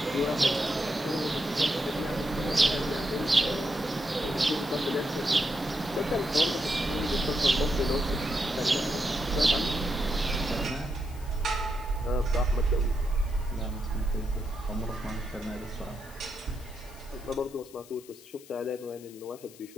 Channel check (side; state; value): left; noise; hiss, 21 dB below the sound